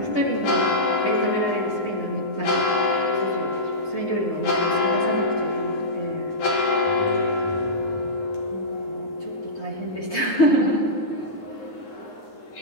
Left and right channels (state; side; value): late; right; 9.6 ms